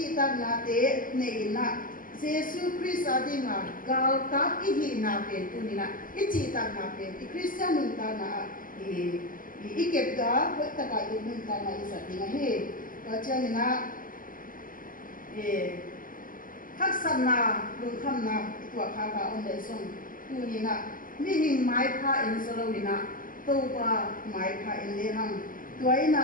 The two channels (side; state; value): right; late; 0.40 ms